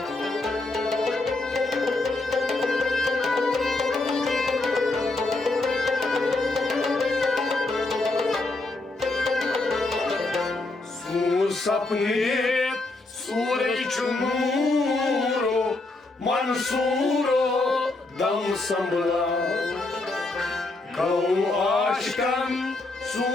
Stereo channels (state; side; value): quieter; right; 3.1 dB